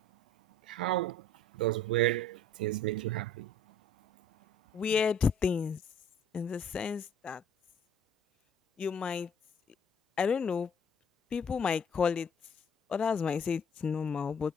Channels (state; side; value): normal; both; correlation 0.55